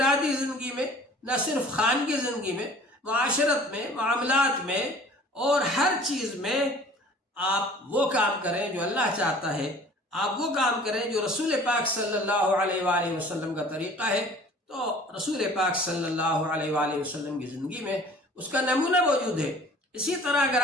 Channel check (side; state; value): both; normal; correlation 0.48